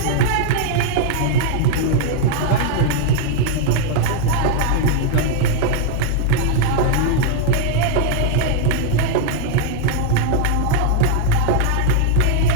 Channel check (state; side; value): different; both; correlation -0.01